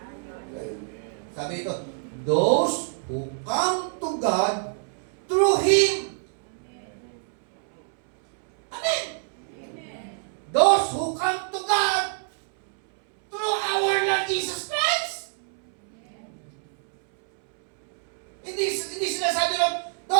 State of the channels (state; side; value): silent; left; 61 dB below the other